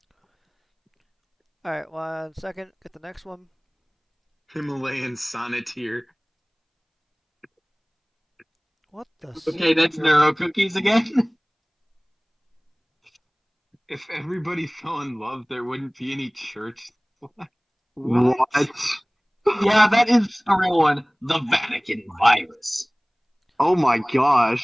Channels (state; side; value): identical; both; correlation 1.00